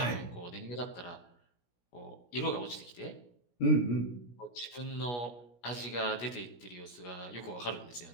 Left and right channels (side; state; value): right; late; 17 ms